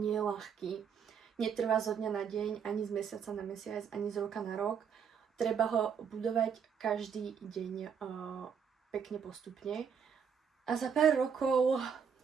je ľahký. Netrvá zo dňa na deň, ani z mesiaca na mesiac, ani z roka na rok. Treba ho budovať každý deň pekne postupne. A za pár rokov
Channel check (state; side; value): quieter; left; 7.1 dB